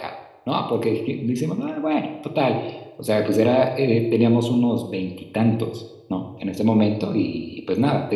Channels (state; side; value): identical; both; correlation 1.00